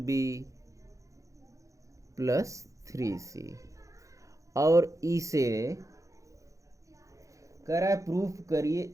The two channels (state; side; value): late; left; 0.15 ms